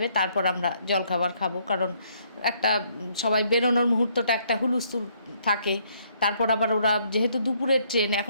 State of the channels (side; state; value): both; inverted; correlation -0.68